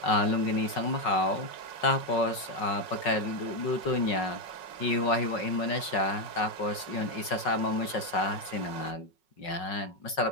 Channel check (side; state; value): right; late; 5.4 ms